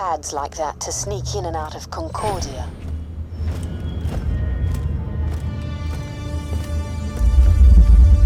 like that to sneak in and out of Concordia.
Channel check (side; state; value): both; identical; correlation 1.00